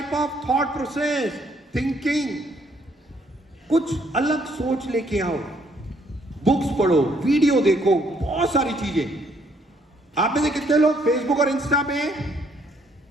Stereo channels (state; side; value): normal; both; correlation 0.68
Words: of thought process, thinking. कुछ अलग सोच लेके आओ, बुक्स पढ़ो, वीडियो देखो, बहुत सारी चीजें। आप में से कितने लोग फेसबुक और इंस्टा पे हैं?